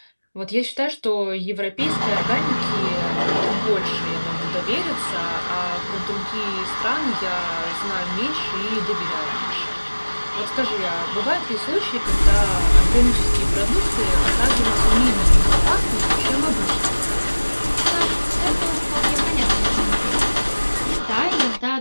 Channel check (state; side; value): inverted; both; correlation -1.00